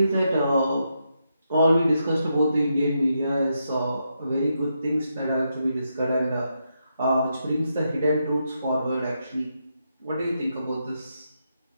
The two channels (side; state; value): both; inverted; correlation -0.82